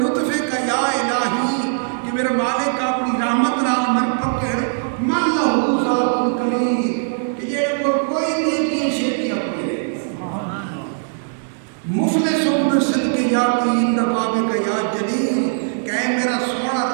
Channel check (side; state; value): left; silent; digital silence